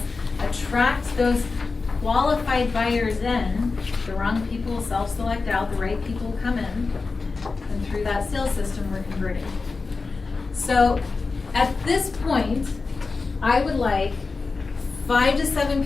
attract those qualified buyers in, the wrong people self-select out, the right people come in, and through that sales system we're converting. So at this point, I would like 5 to 7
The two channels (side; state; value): right; quieter; 4.2 dB